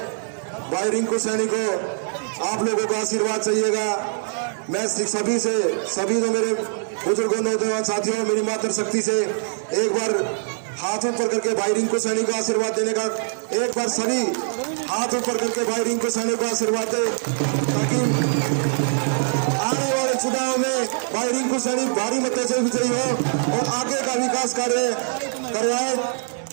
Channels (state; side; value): silent; left; digital silence